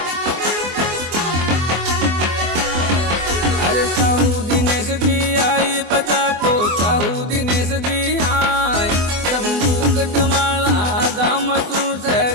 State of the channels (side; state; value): left; late; 24 ms